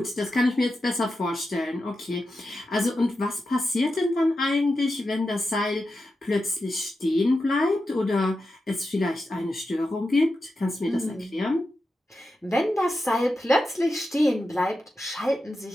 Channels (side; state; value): both; normal; correlation 0.90